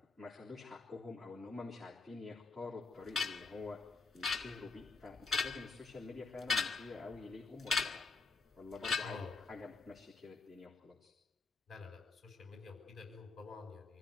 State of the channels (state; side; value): quieter; right; 4.2 dB